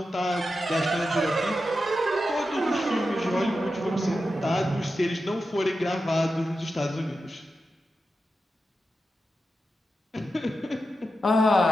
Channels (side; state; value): both; normal; correlation 0.90